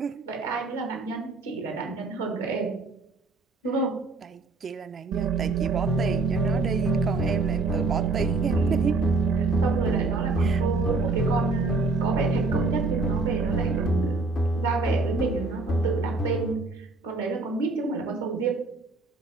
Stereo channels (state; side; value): quieter; left; 3.6 dB